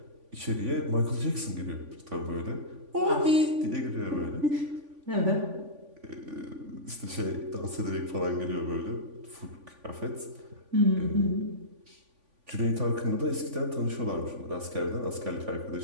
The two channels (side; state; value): left; late; 3.5 ms